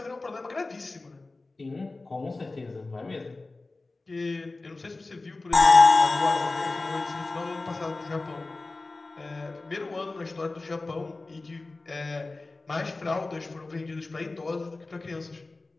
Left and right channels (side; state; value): right; quieter; 3.3 dB